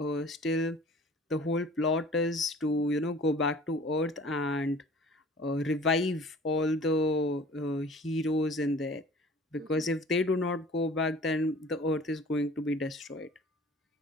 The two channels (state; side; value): normal; both; correlation 0.47